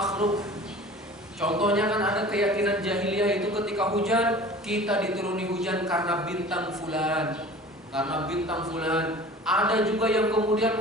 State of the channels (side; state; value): both; normal; correlation 0.42